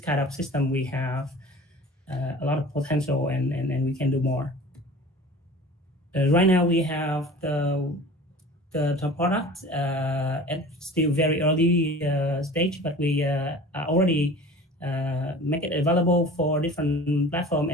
of system, we have a lot of potential, and we can do more. Right now, we have the product at still very early stage, but we are already make it available for different platform,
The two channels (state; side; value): normal; both; correlation 0.41